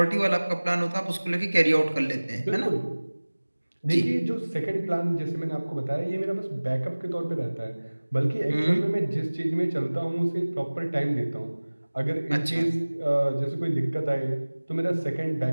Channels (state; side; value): inverted; both; correlation -1.00